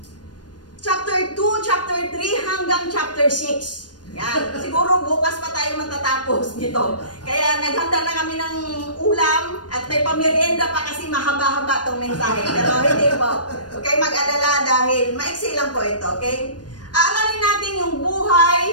chapter 2, chapter 3, hanggang chapter 6. Yan. Siguro bukas pa tayo matatapos nito. Kaya naghanda na kami ng ulam at may pamerienda pa kasi mahaba-haba itong mensahe. Pero hindi po. Okay, mag-alala dahil maiksi lang po ito. Okay? Aaralin natin yung buhay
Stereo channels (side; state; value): right; late; 0.69 ms